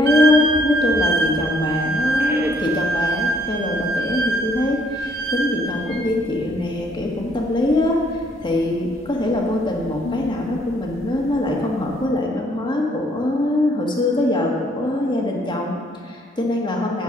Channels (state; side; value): normal; both; correlation 0.66